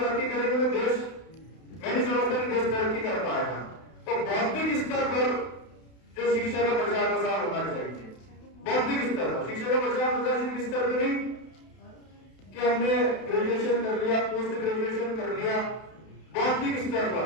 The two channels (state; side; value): late; right; 32 ms